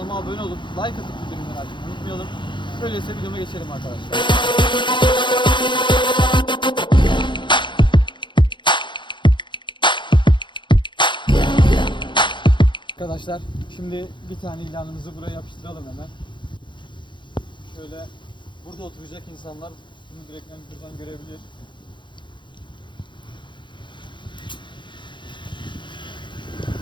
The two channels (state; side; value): late; right; 0.23 ms